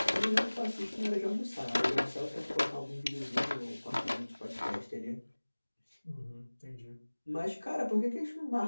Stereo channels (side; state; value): both; inverted; correlation -1.00